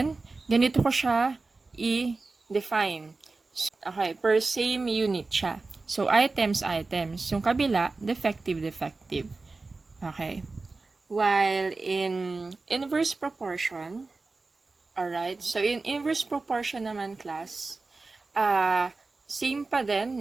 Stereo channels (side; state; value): left; quieter; 3.7 dB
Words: ganito ko siya i-define. Okay, per same unit siya. So, items. Yung kabila, defective. Okay. While in inverse proportion, alright, so in inverse proportion naman class, same pa din,